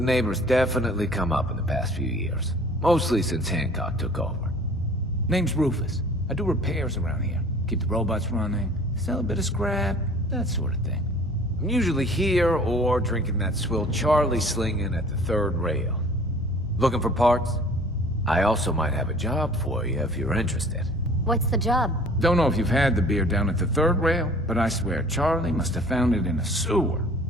definitely come up in the past few years. Mostly since Hancock took over. Name's Rufus. I do repairs around here. Keep the robots running, sell a bit of scrap, that sort of thing. I'm usually here or drinking that swill Charlie slinging at the third rail. Looking for parts? I also might have a job for you if you're interested. What's the job? Don't know if you've had the beer down at the third rail, but I swear Charlie must have found it in a sewer.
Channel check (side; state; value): both; normal; correlation 0.49